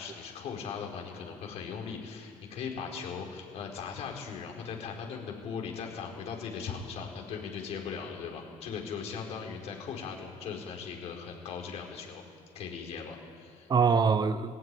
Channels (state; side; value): normal; both; correlation 0.52